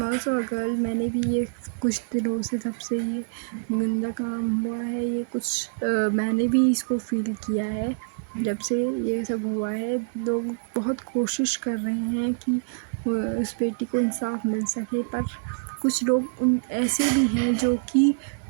also a girl. मैंने भी ये कुछ दिनों से जब से ये गंदा काम हुआ है, ये कुछ मैंने भी इसको फील किया है। जब से ये सब हुआ है, लोग बहुत कोशिश कर रहे हैं कि उस बेटी को इंसाफ मिल सके, पर कुछ लोग उन ऐसे भी हैं जो कि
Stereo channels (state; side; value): silent; left; 61 dB below the other